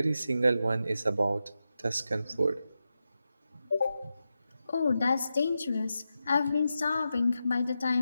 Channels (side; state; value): both; inverted; correlation -0.90